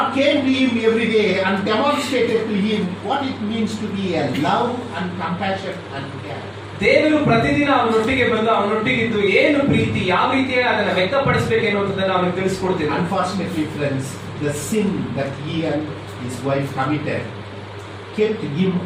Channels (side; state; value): both; identical; correlation 1.00